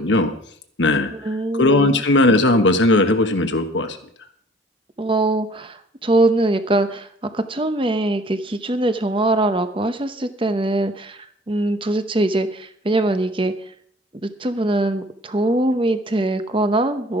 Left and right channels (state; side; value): normal; both; correlation 0.51